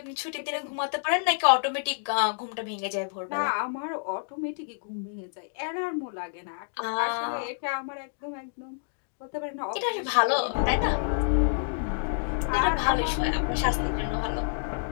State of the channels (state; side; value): silent; right; digital silence